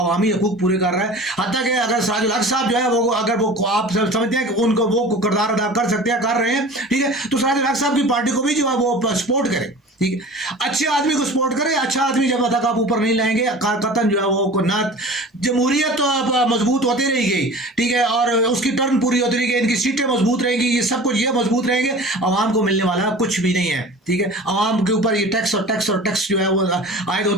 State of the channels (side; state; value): both; normal; correlation 0.39